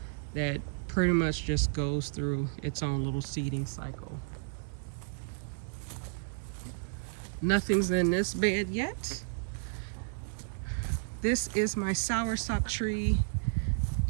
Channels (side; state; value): left; silent; 56 dB below the other